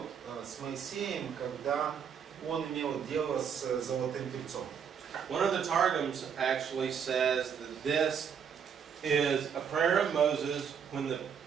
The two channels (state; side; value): quieter; left; 7.3 dB